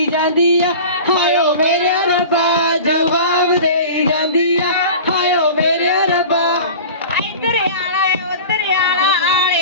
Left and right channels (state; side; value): inverted; both; correlation -0.36